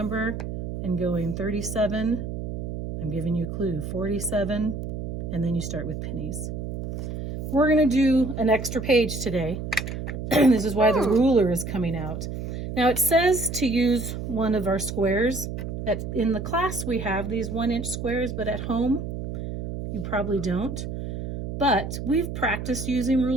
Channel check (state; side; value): noise; right; hum, 6 dB below the sound